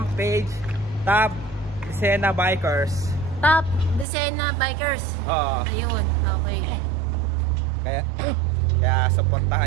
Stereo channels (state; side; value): drops out; left; at 4.0 s